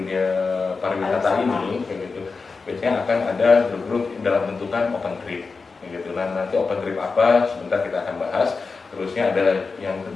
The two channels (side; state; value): right; quieter; 4.5 dB